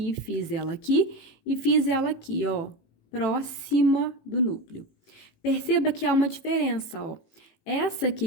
fiz ela aqui e fiz ela aqui, ó, próxima do núcleo. Perceba que há uma diferença, ó. Essa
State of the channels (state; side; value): late; right; 18 ms